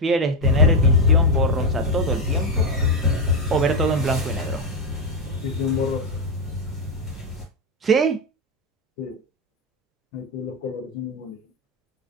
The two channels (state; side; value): normal; both; correlation 0.07